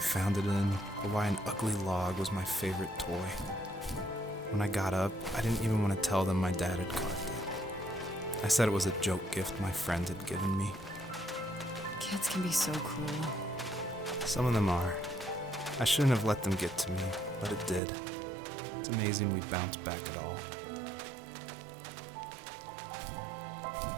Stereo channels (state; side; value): drops out; left; at 17.8 s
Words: found it in, or why an ugly log was my favorite toy. When I got up, I didn't even want to tell them my dad had carved it. I said it was a joke gift my friend had given me. Kids can be so cruel. Some of them are. I shouldn't have let them get to me, but it did. It's amazing we bounced back at all.